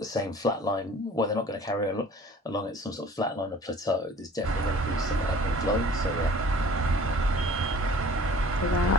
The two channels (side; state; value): both; normal; correlation 0.48